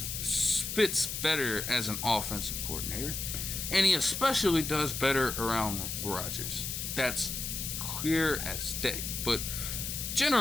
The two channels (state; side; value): noise; left; hiss, 4 dB below the sound